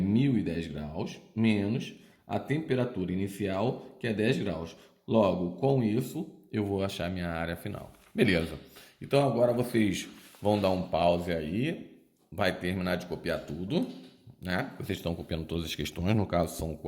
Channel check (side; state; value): both; identical; correlation 1.00